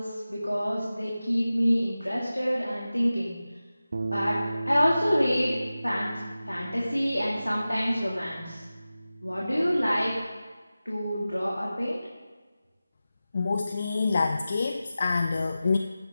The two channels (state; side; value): inverted; both; correlation -0.95